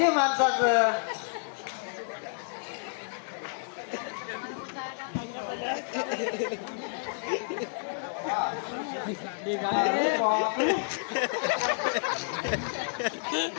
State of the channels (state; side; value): silent; right; digital silence